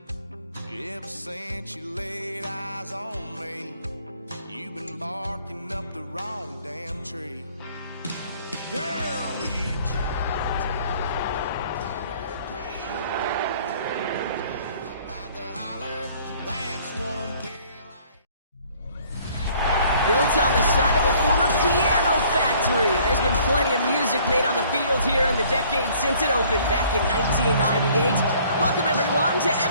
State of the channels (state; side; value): inverted; both; correlation -0.57